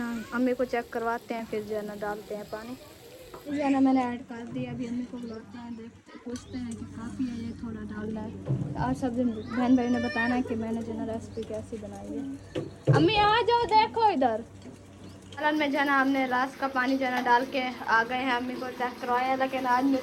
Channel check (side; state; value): both; identical; correlation 1.00